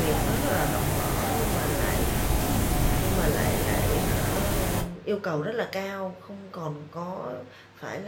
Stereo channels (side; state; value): both; identical; correlation 1.00